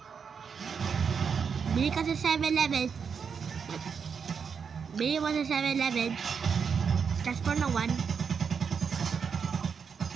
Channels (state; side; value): quieter; left; 6.3 dB